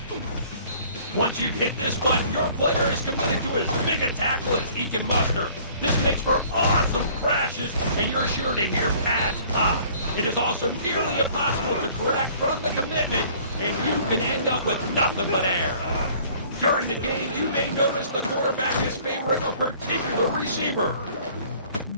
Once you've hit this button, your player is committed to as big a tackle as he can muster. This makes for awesome crashes, and you're sure to hear pads pop. It is also nearly impossible to correct from the commitment, and you can end up with nothing but air. During the game, you may notice the quarterback is favoring a particular receiver.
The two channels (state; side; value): inverted; both; correlation -0.54